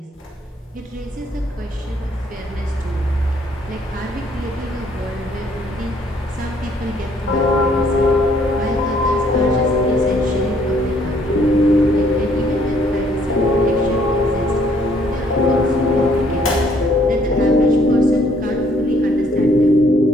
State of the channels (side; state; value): both; normal; correlation 0.65